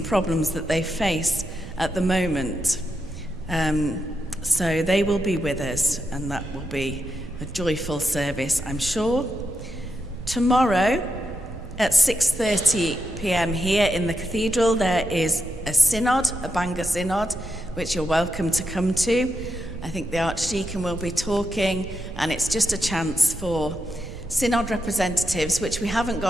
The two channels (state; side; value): noise; right; rumble, 12 dB below the sound